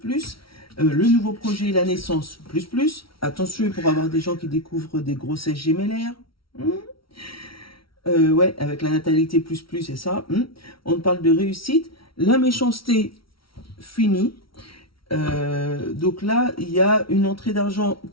le nouveau projet, la naissance, plus. Attention pour avoir des gens qui découvrent des grossesses gémellaires. Ouais, avec la natalité, c'est ça. On parle de réussite. La méchanceté, fini. Donc là, il y a une entrée d'argent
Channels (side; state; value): right; late; 0.75 ms